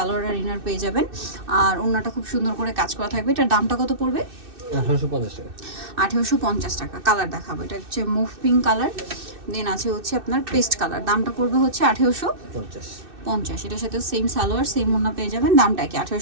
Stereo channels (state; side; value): late; left; 2.6 ms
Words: আর ইনার পেয়ে যাবেন। আর ওড়নাটা খুব সুন্দর করে কাজ করা থাকবে। এটার দামটা কত পড়বে? 1850 টাকা। 1850 টাকা। কালার দেখাবো, এটা হচ্ছে মুভ পিঙ্ক কালার, দেন আছে হচ্ছে আপনার পেস্ট কালার। দামটা পড়বে হচ্ছে 1850। এটার সাথে সেম সালোয়ার সেম ওড়না পেয়ে যাবেন, দামটা কি